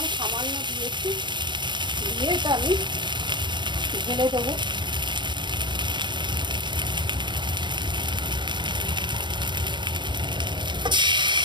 সামান্য দিয়েছি, দিয়ে এটা আমি ঢেলে দেবো।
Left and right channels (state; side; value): late; left; 0.22 ms